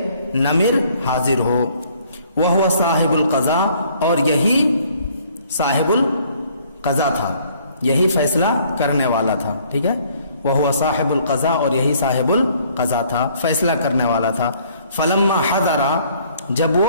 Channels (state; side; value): inverted; both; correlation -0.61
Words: نمر حاضر ہو، وہو صاحب القضاء، اور یہی صاحب القضاء تھا، یہی فیصلہ کرنے والا تھا، ٹھیک ہے، وہو صاحب القضاء، اور یہی صاحب القضاء تھا، فیصلہ کرنے والا تھا۔ فلما حضر، جب